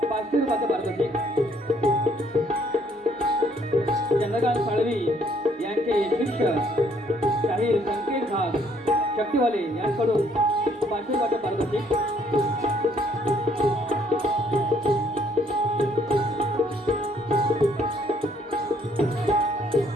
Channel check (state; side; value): normal; both; correlation 0.66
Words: 500 रुपयाचं पारितोषिक, चंद्रकांत साळवी यांचे शिष्य शाहीर संकेत घास शक्तीवाले यांकडून 500 रुपयाचं पारितोषिक,